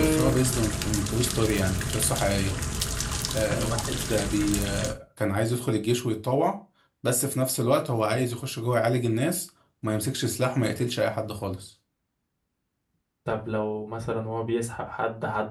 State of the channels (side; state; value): both; identical; correlation 1.00